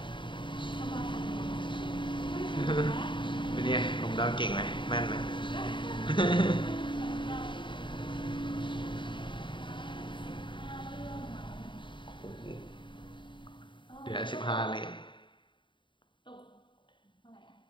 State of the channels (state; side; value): late; right; 0.23 ms